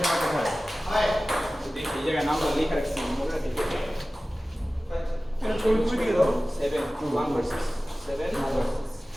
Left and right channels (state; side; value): normal; both; correlation 0.97